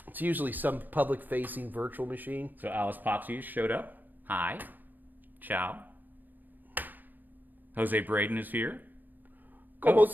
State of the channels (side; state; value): left; late; 0.090 ms